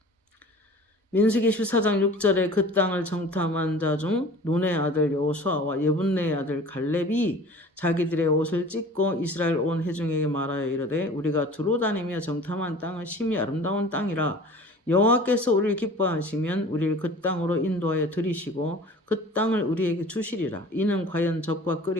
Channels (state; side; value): normal; both; correlation 0.43